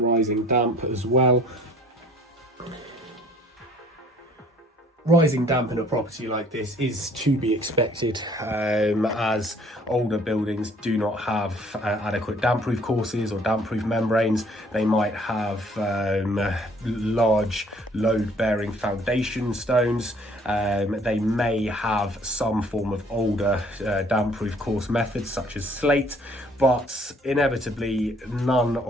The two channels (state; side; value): normal; both; correlation 0.58